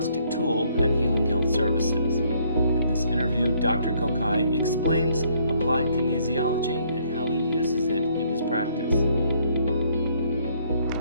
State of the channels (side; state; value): both; inverted; correlation -0.66